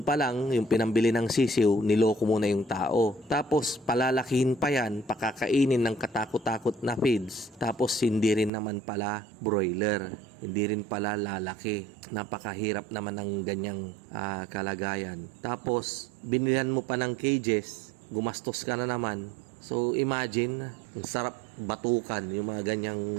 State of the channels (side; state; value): left; drops out; at 8.5 s